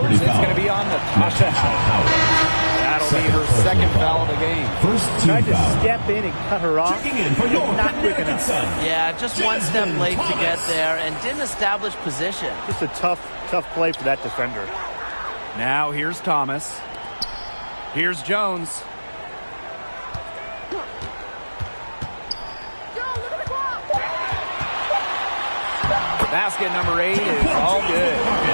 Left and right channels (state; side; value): inverted; both; correlation -1.00